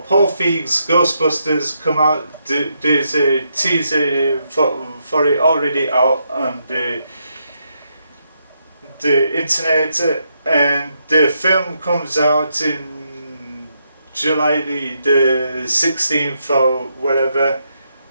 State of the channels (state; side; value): inverted; both; correlation -0.79